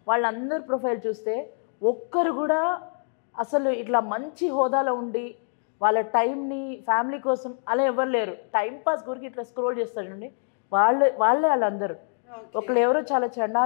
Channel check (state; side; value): silent; right; 61 dB below the other